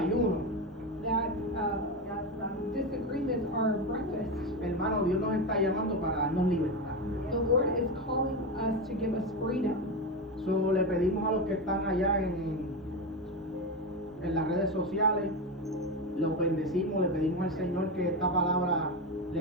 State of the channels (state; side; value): normal; both; correlation 0.16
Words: That disagreements are breakfast. Hermano, Dios nos está llamando para darnos libertad. The Lord is calling us to give us freedom. So, le pedimos a los que están allá en las redes sociales, los bendecimos, le pedimos al Señor que esta palabra